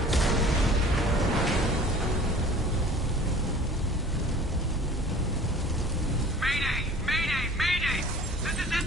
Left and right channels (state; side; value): normal; both; correlation 0.46